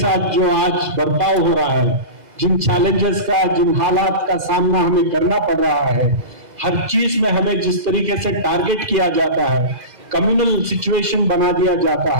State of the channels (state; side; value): late; left; 2.0 ms